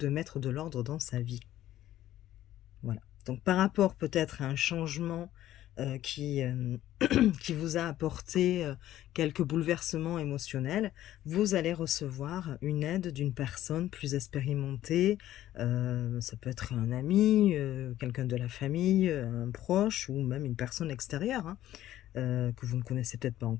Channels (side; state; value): right; quieter; 13.4 dB